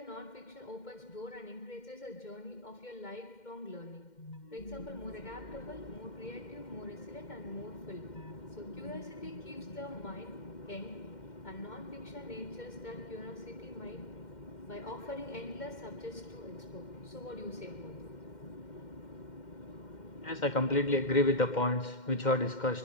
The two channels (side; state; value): right; late; 2.1 ms